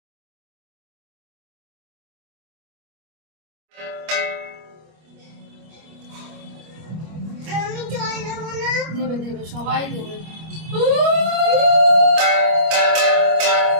দেবে দেবে, সবাই দেবে।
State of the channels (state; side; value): late; left; 25 ms